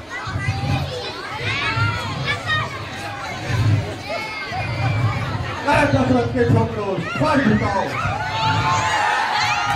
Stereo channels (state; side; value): identical; both; correlation 1.00